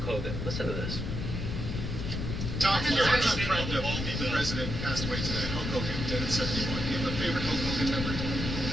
Hogan. Listen to this. Tom, your longtime friend of the president passed away today. Hulk Hogan, dead at 71. Do you have a favorite Hulk Hogan memory?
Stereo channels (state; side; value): noise; left; rumble, 3 dB below the sound